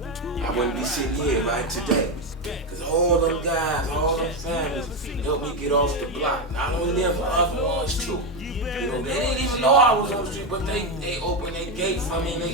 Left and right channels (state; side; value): normal; both; correlation 0.10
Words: I wouldn't be sitting here right today. Because all them guys, all them families helped me get off the block. Not only them, but other ones too. You know, they didn't even know I was on the street, but they opened their gate for me in